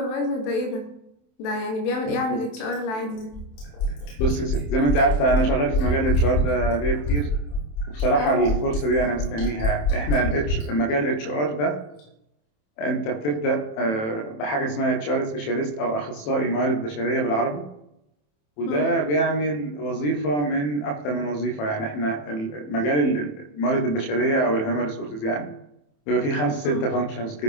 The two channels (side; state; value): right; late; 27 ms